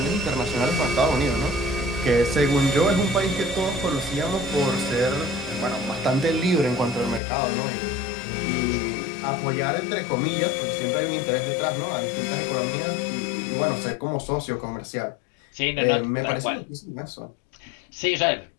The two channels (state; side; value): drops out; right; at 7.2 s